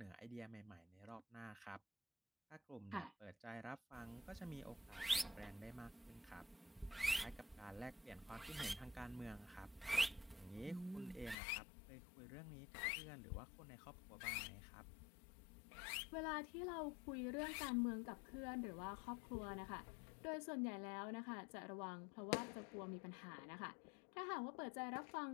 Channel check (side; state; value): right; drops out; at 11.4 s